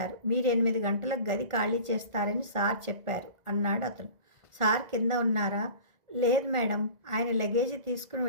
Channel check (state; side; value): late; left; 2.0 ms